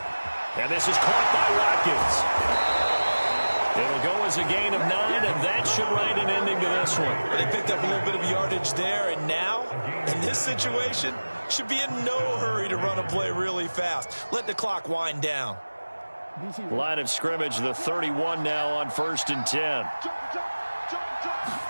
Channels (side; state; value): both; inverted; correlation -1.00